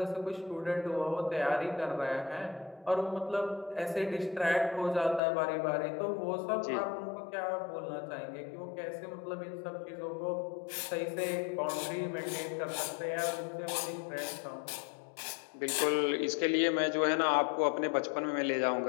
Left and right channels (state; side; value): drops out; right; at 5.2 s